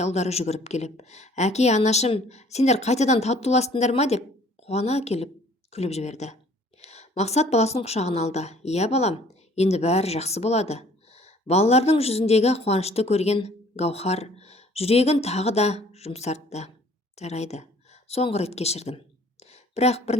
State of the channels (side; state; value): both; normal; correlation 0.55